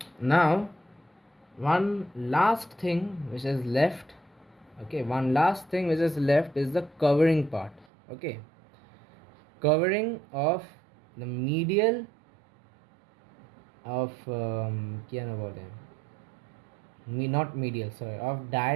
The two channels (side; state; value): left; drops out; at 7.9 s